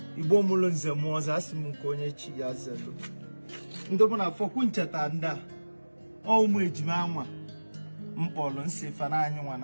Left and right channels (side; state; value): both; inverted; correlation -1.00